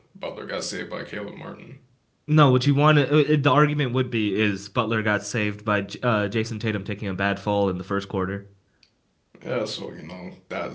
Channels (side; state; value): both; identical; correlation 1.00